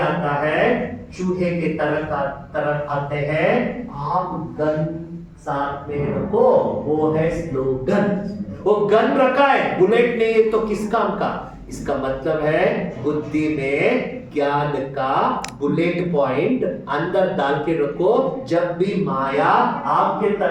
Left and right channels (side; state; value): both; identical; correlation 1.00